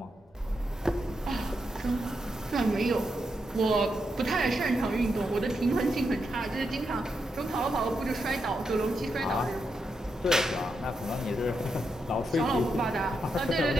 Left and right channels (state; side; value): normal; both; correlation 0.84